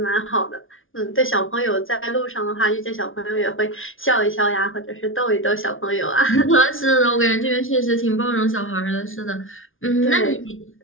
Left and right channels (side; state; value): right; late; 0.58 ms